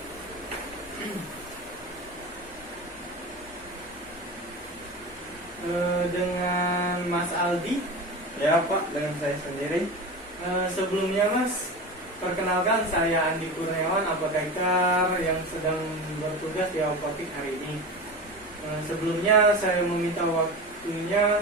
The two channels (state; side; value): normal; both; correlation 0.28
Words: Dengan Mas Aldi. Ya, Pak, dengan saya sendiri. Sebelumnya, Mas, perkenalkan saya Andi Kurniawan, apoteker yang sedang bertugas di apotek hari ini. Sebelumnya saya meminta waktunya